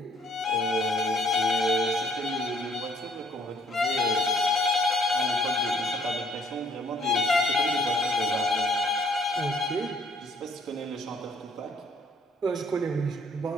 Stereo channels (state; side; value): normal; both; correlation 0.62